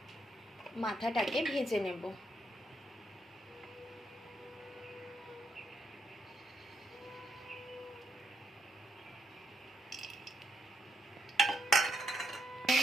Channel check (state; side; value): normal; both; correlation 0.78